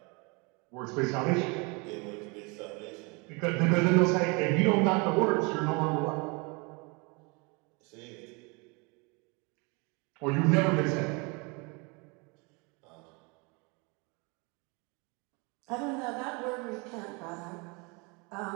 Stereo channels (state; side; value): quieter; left; 29.8 dB